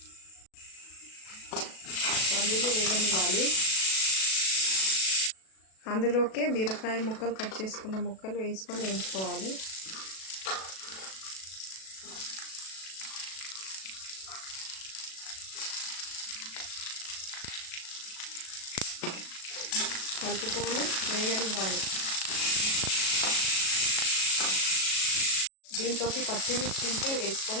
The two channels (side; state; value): right; late; 37 ms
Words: పల్లీలు వేగనివ్వాలి. అందులోకే బీరకాయ ముక్కలు కట్ చేసుకున్న ముక్కలు వేసుకొని వేయించుకోవాలి. కలుపుకొని వేగనివ్వాలి. దీంట్లోకి పచ్చిమిర్చి ఉంటే